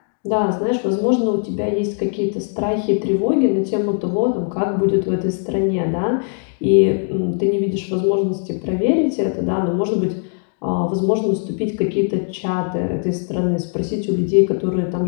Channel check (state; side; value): silent; right; 57 dB below the other